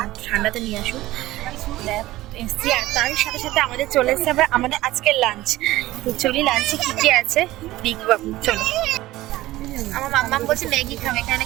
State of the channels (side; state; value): left; quieter; 17.0 dB